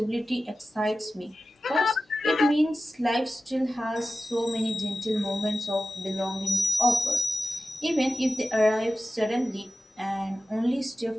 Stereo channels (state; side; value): normal; both; correlation 0.95